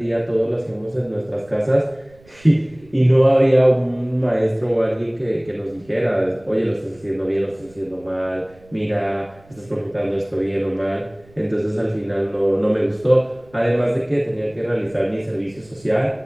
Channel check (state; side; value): noise; right; rumble, 27 dB below the sound